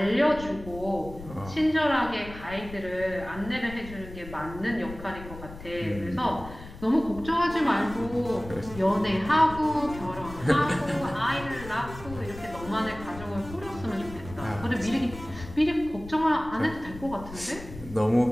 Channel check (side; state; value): left; noise; rumble, 14 dB below the sound